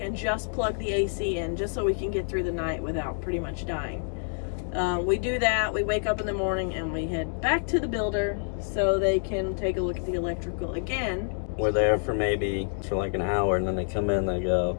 and just plug the AC in, just so we can get through the night without pretty much dying. We do that, we wake up in the morning, and we head back to the builder so they can take a look at the electrical again. We're there for like an hour, and then they come in and they go,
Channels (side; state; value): right; silent; 60 dB below the other